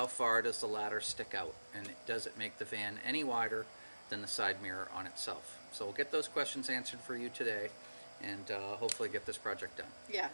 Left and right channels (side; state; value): both; inverted; correlation -1.00